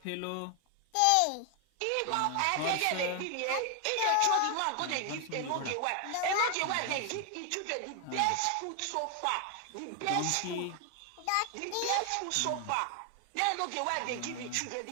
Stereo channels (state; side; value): different; both; correlation 0.00